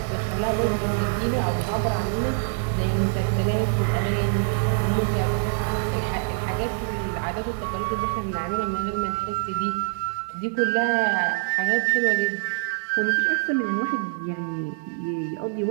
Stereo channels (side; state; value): left; silent; 62 dB below the other